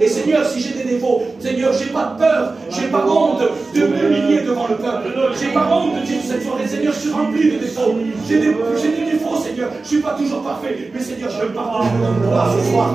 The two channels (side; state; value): left; quieter; 3.7 dB